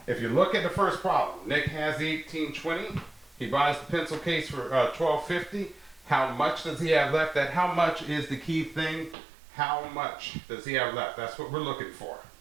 If you look at the first problem, Nick has the $18.20. He buys the pencil case for $12.50. How much does he have left? That how much is the key thing. How much does he have left? That's what we're looking for.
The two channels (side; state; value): left; drops out; at 9.2 s